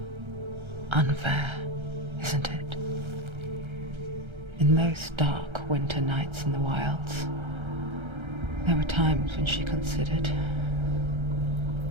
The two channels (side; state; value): left; late; 1.3 ms